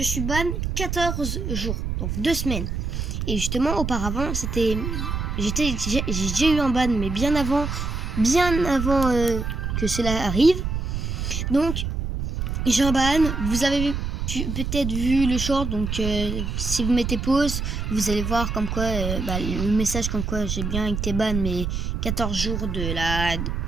suis ban 14 jours, donc 2 semaines. Et justement, auparavant, j'ai déjà eu un ban, mais bien avant que cela arrive. Donc, j'ai un ban. Vous avez peut-être vu le short, donc si vous mettez pause, vous allez voir comme quoi le message comme quoi j'ai bien été ban, mais 14 jours de la.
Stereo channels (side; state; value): right; noise; rumble, 3 dB below the sound